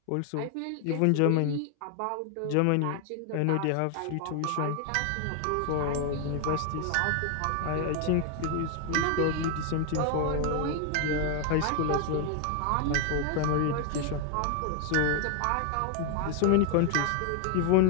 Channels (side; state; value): both; different; correlation 0.00